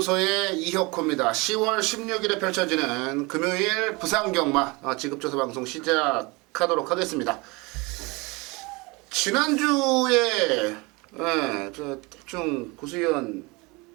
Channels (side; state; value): left; quieter; 25.9 dB